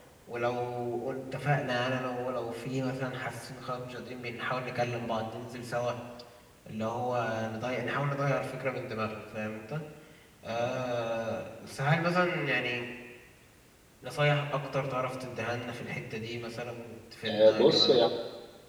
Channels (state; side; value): identical; both; correlation 1.00